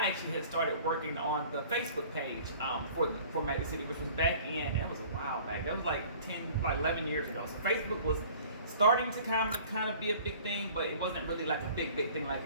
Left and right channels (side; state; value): both; inverted; correlation -0.48